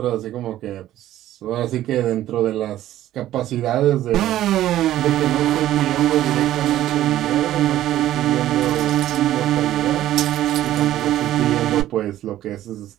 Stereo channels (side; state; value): left; quieter; 13.4 dB